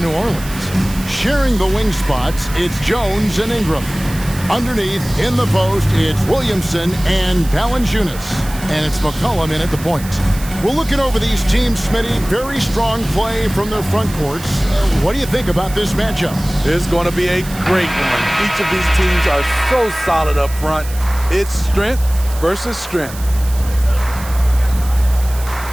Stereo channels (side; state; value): right; noise; hiss, 15 dB below the sound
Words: Orleans, sharing the wing spots, it's Jones and Ingram. Underneath, in the post, it's Williamson and Valanciunas. And it's McCollum in at the point. We're looking over these teams, Smitty. Very strong play from their front courts. What do you think about this matchup? It's going to be a great one. Each of these teams are so solid up front. It's strength versus strength.